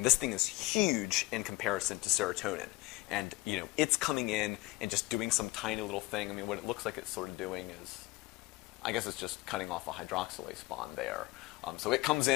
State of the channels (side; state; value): right; quieter; 21.2 dB